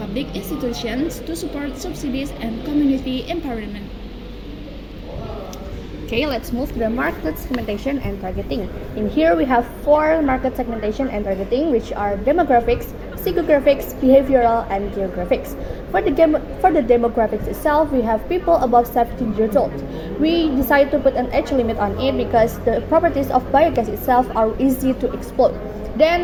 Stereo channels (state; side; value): identical; both; correlation 1.00